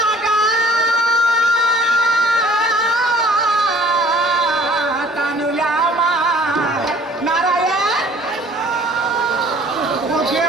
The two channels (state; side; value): normal; both; correlation 0.53